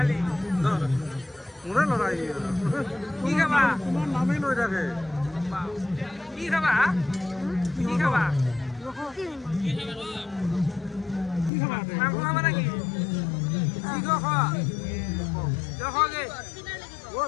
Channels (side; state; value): right; drops out; at 11.5 s